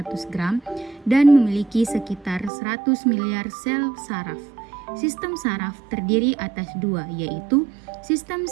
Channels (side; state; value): left; drops out; at 2.5 s